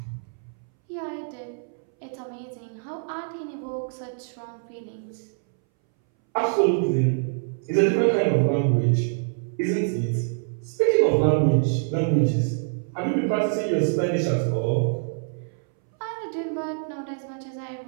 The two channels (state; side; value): silent; left; 61 dB below the other